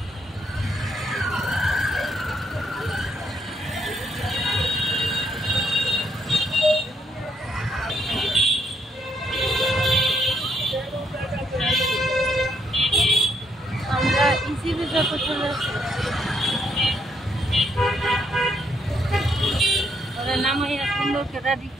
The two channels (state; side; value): normal; both; correlation 0.74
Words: আমরা ইজিলি যত চলে আসি ওরা নামাইয়া সুন্দর করে